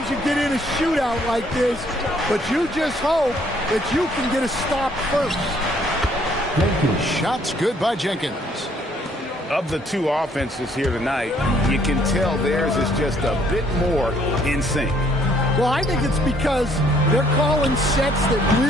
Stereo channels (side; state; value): both; normal; correlation 0.64